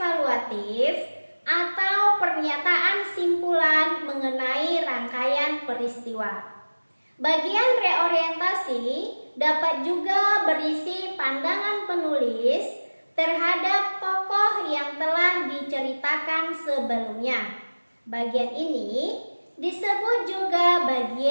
atau pernyataan simpulan mengenai rangkaian peristiwa. Bagian reorientasi dapat juga berisi pandangan penulis terhadap tokoh yang telah diceritakan sebelumnya. Bagian ini disebut juga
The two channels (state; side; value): inverted; both; correlation -1.00